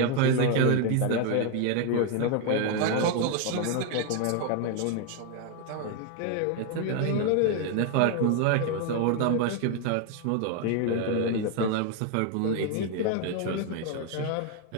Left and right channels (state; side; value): different; both; correlation 0.01